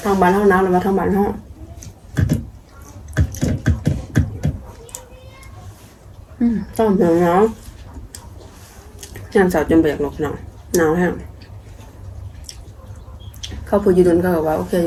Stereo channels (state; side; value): identical; both; correlation 1.00